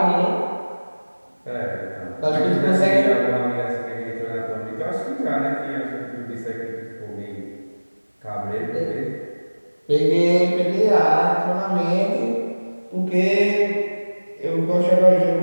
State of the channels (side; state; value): both; inverted; correlation -1.00